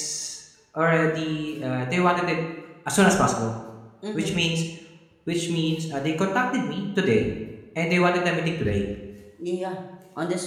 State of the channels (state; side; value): identical; both; correlation 1.00